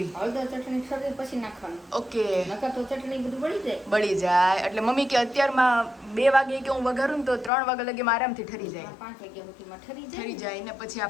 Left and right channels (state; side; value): drops out; right; at 7.5 s